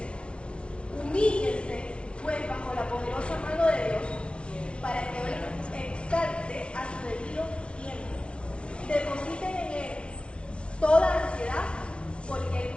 Humíllense, pues, bajo la poderosa mano de Dios, para que Él exalte a su debido tiempo. Depositen en Él toda ansiedad, porque Él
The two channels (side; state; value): right; late; 0.059 ms